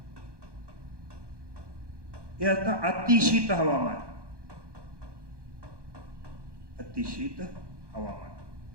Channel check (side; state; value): left; late; 1.2 ms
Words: हे असतं अतिशीत हवामान. अतिशीत हवामान.